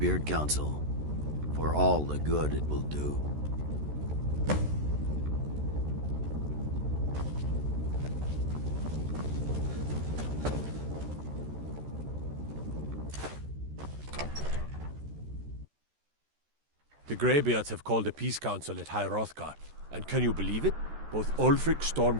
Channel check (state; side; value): late; left; 13 ms